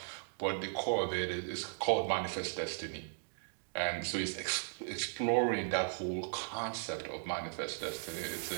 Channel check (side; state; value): left; silent; digital silence